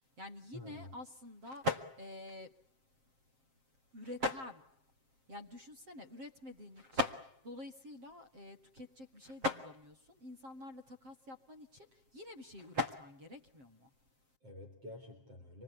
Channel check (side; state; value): left; late; 7.6 ms